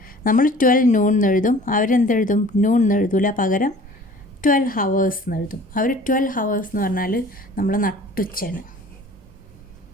നമ്മൾ 12 noon എന്നെഴുതും, അവരെന്തെഴുതും? noon എന്നെഴുതൂല, പകരം 12 hours എന്നെഴുതും. അവർ 12 hours എന്ന് പറഞ്ഞാൽ നമ്മൾ നട്ടുച്ചയാണ്.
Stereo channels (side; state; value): both; normal; correlation 0.47